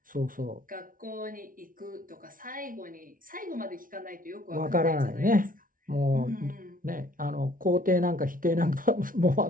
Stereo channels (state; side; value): late; left; 0.39 ms